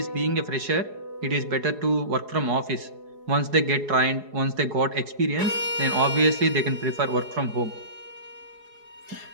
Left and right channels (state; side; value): late; left; 4.8 ms